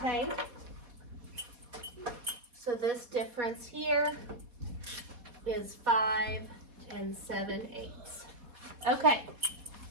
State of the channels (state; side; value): late; left; 4.1 ms